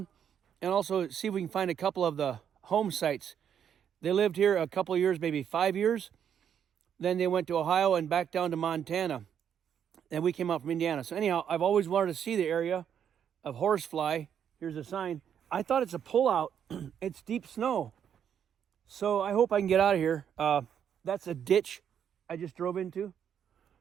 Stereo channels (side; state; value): left; quieter; 8.6 dB